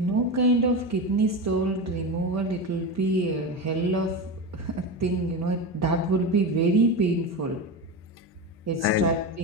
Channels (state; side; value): normal; both; correlation 0.21